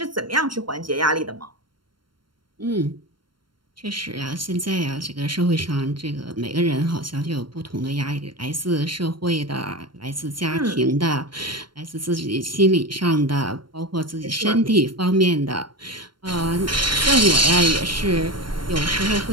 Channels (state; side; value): late; left; 0.72 ms